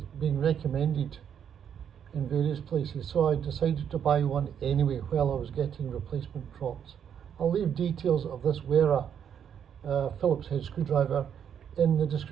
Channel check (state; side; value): quieter; left; 8.5 dB